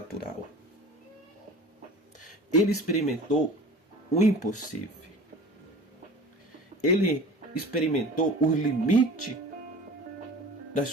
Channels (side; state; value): both; normal; correlation 0.40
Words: Ele experimentou o impossível. Ele experimentou o limite